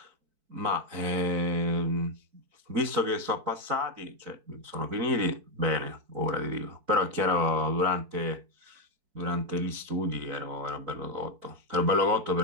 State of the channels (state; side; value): late; left; 4.5 ms